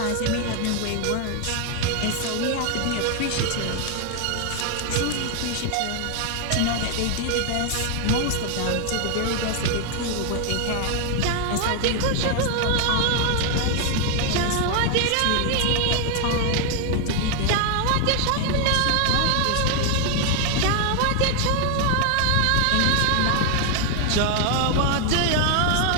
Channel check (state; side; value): different; both; correlation 0.01